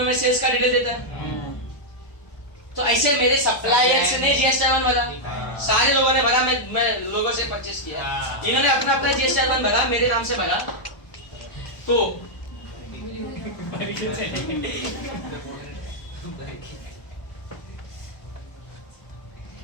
मैं सेल्स का डिटेल देता है। तो ऐसे मेरे सप्लायर्स ने GSTR 1 भरा, सारे लोगों ने भरा, मैं लोगों से परचेस किया, इन्होंने अपना अपना GSTR 1 भरा, मेरे नाम से भरा। तो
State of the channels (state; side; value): late; right; 1.0 ms